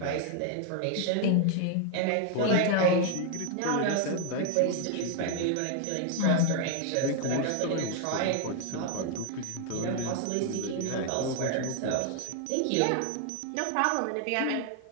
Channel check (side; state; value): both; different; correlation 0.00